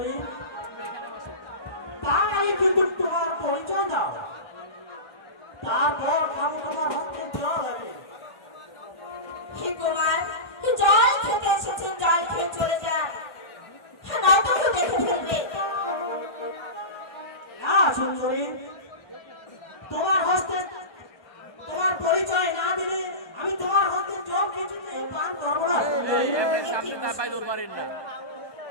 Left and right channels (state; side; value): late; right; 1.2 ms